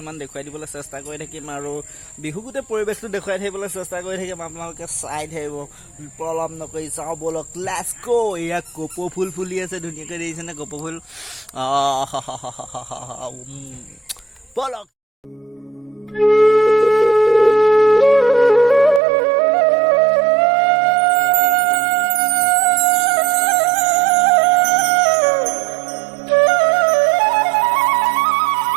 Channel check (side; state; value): left; drops out; at 19.0 s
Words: দেখুৱাই দিবলৈ চেষ্টা কৰি থাকিম আৰু বিহু গোটেই পৰিৱেশটো দেখুৱাই থাকিবলৈ চেষ্টা কৰি থাকিম। আপোনালোকে চাই থাকিব, পলম নকৰি যাওঁ বলক, লেটছ গো। এয়া কপৌ ফুল ফুলি আছে, ধুনীয়াকৈ দেখিছেনে কপৌ ফুল? বলক।